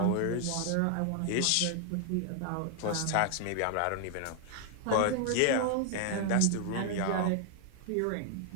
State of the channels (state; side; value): different; both; correlation 0.00